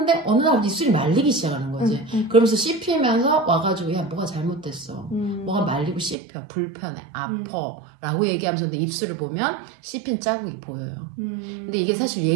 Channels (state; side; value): drops out; left; at 6.2 s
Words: 어느 날 입술이 말리기 시작하는 거지. 그러면서 씹히면서 와가지고 야 뭐가 잘못됐어. 뭐가 말리고 씹혀. 불편해. 아파. 라고 얘기하면서 근데 입술을 보면 씹힌 자국이 보여요. 근데 이게 사실